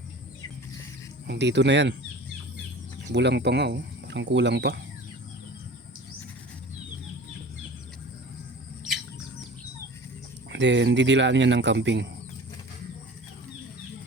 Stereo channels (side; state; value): both; normal; correlation 0.40